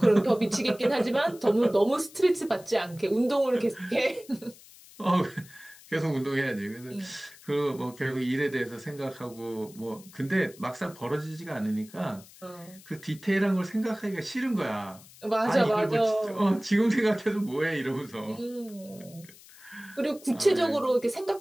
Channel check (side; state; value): left; noise; hiss, 22 dB below the sound